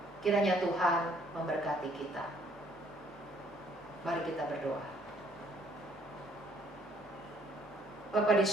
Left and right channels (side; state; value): both; normal; correlation 0.63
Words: Kiranya Tuhan memberkati kita. Mari kita berdoa. Bapa di